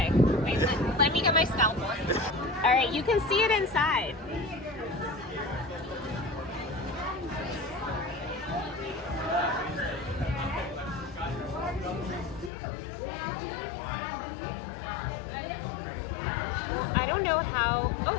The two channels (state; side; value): drops out; right; at 12.5 s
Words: wait, let me get my scalpel. All right, you can see it inside. I don't know how. Oh,